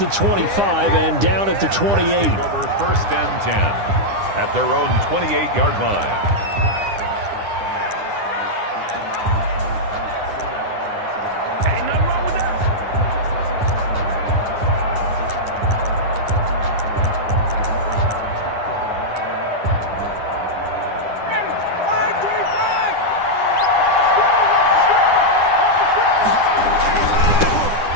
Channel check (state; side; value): late; left; 9.9 ms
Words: 25 and down at the 28. Over 1st and 10 at their own 28-yard line.